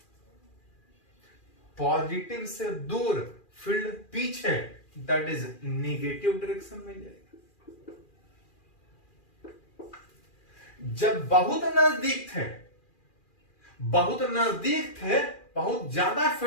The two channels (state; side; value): late; right; 2.4 ms